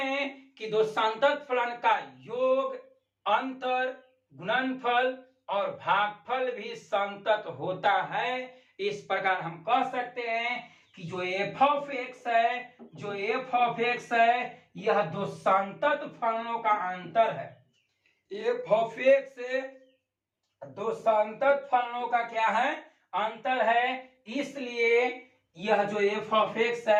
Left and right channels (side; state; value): both; identical; correlation 1.00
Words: कि दो संतत फलन का योग, अंतर, गुणनफल और भागफल भी संतत होता है। इस प्रकार हम कह सकते हैं कि जो एफ ऑफ एक्स है, यह दो संतत फलनों का अंतर है। एफ ऑफ एक्स दो संतत फलनों का क्या है, अंतर है। इसलिए यह जो एफ ऑफ एक्स